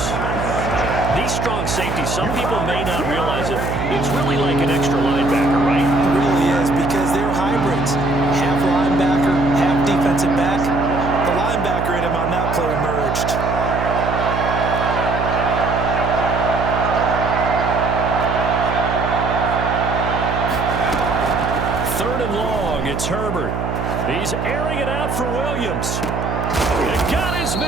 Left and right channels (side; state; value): right; noise; hum, 3 dB below the sound